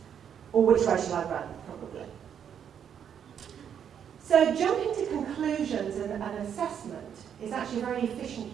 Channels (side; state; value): left; quieter; 8.5 dB